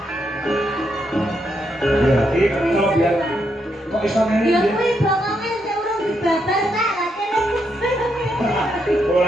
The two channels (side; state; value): both; normal; correlation 0.79